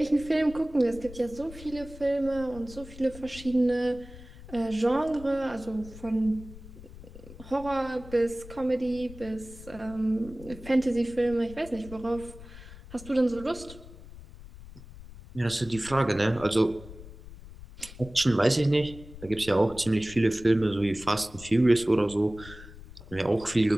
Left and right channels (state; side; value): noise; left; rumble, 16 dB below the sound